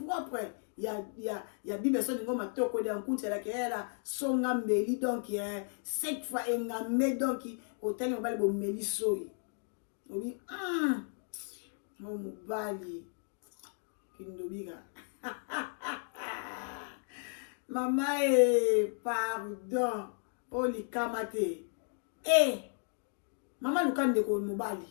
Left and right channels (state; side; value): silent; right; 55 dB below the other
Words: ya bibe so ningo matoko de nkunti la kela songa mbeli donc cette fois engamé donc hôtel ngobali bo meli soyi obi mo mobali kindobika mama pardon oli kamate maman Luka ndeko mobali